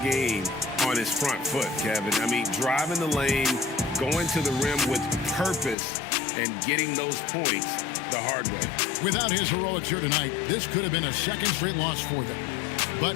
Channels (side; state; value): right; drops out; at 5.8 s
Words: on his front foot, Kevin. I mean, driving the lane, going to the rim with purpose, and getting those points the hard way. Without his heroics here tonight, this could have been a second straight loss for them. But